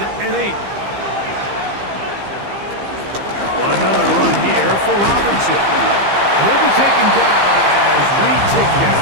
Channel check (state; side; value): late; left; 15 ms